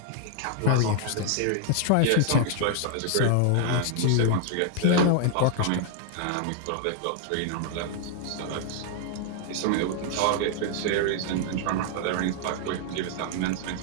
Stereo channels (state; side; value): different; both; correlation 0.00